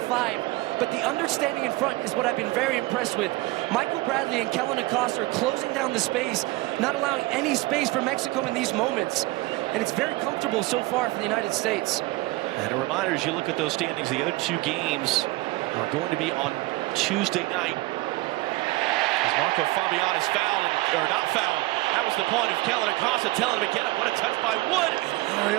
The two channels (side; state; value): left; quieter; 20.8 dB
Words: but the understanding in front is what I've been very impressed with. Michael Bradley and Kellyn Acosta are closing down the space, not allowing any space for Mexico in these moments, and it's very comfortable so far for the United States. And a reminder, as you look at those standings, the other 2 games are going to be on Tuesday night. As Marco Fabian is fouled, or not fouled. That was the point of Kellyn Acosta telling him to get up. What a touch by Wood.